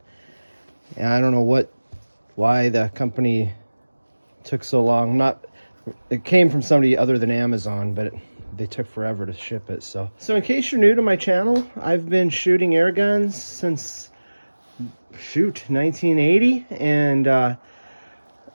and I don't know why the company took so long. It came from somebody other than Amazon, but they took forever to ship it. So in case you're new to my channel, I've been shooting air guns since 1980, and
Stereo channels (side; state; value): both; inverted; correlation -1.00